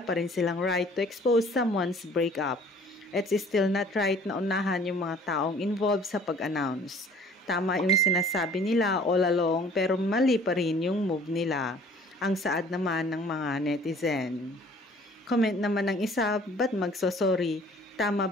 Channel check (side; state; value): both; normal; correlation 0.53